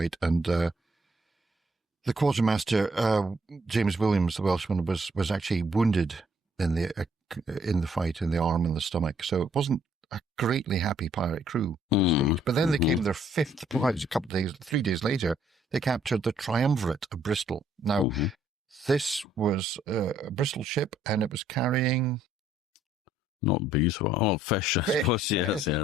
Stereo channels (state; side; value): normal; both; correlation 0.66